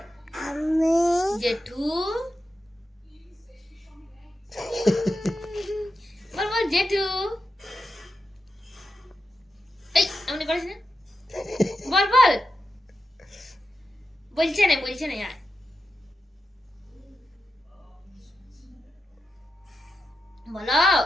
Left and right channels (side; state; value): both; normal; correlation 0.89